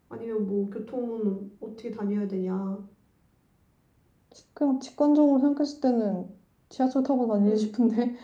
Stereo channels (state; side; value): identical; both; correlation 1.00